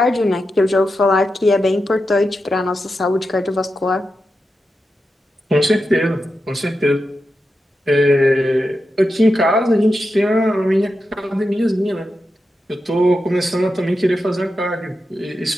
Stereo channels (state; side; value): normal; both; correlation 0.89